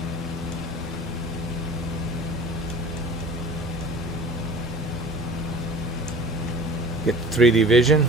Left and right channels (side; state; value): both; normal; correlation 0.42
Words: Get 3D vision.